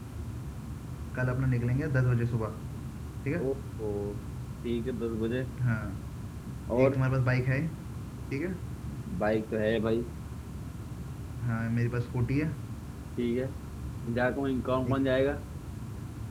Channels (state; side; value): identical; both; correlation 1.00